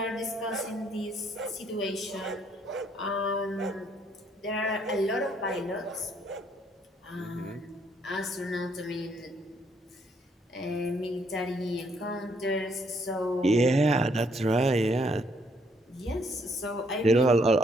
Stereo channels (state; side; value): normal; both; correlation 0.69